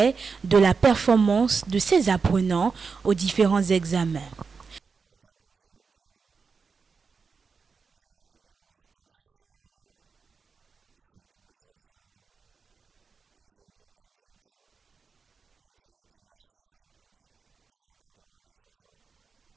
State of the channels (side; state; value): left; quieter; 5.2 dB